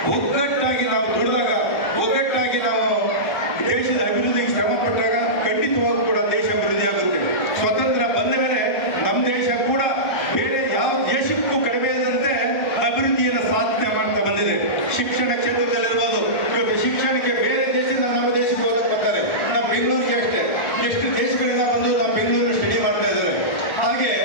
ಒಗ್ಗಟ್ಟಾಗಿ ನಾವು ದುಡಿದಾಗ, ಒಗ್ಗಟ್ಟಾಗಿ ನಾವು ದೇಶದ ಅಭಿವೃದ್ಧಿಗೆ ಶ್ರಮ ಪಟ್ಟಾಗ ಖಂಡಿತವಾಗೂ ಕೂಡ ದೇಶ ಅಭಿವೃದ್ಧಿ ಆಗುತ್ತೆ. ಸ್ವತಂತ್ರ ಬಂದ ಮೇಲೆ ನಮ್ಮ ದೇಶ ಕೂಡ ಬೇರೆ ಯಾವ ದೇಶಕ್ಕೂ ಕಡಿಮೆ ಇದ್ದಂತೆ ಅಭಿವೃದ್ಧಿಯನ್ನು ಸಾಧನೆ ಮಾಡ್ತಾ ಬಂದಿದೆ. ಶಿಕ್ಷಣ ಕ್ಷೇತ್ರದಲ್ಲಿರ್ಬೋದು. ಇವತ್ತು ಶಿಕ್ಷಣಕ್ಕೆ ಬೇರೆ ದೇಶದಿಂದ ನಮ್ಮ ದೇಶಕ್ಕೆ ಹೋಗಕ್ಕೆ ಬರ್ತಾರೆ. ನಮ್ಮ ಬೆಂಗಳೂರಿಗೆ ಅಷ್ಟೇ ಎಷ್ಟು ದೇಶಗಳಿಂದ ಬಂದು ನಮ್ಮ ಬೆಂಗಳೂರು ಸ್ಟಡಿ ಮಾಡ್ತಾ ಇದ್ದಾರೆ. ಹಾಗೆ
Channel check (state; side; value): late; right; 1.3 ms